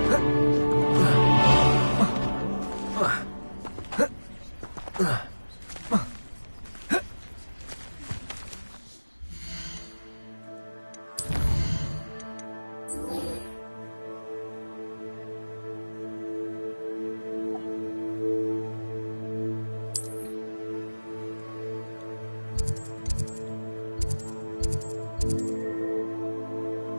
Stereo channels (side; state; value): both; inverted; correlation -1.00